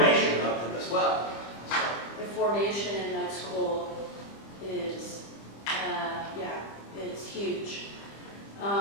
of them as well. The formation in med school is, it's huge.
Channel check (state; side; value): late; right; 25 ms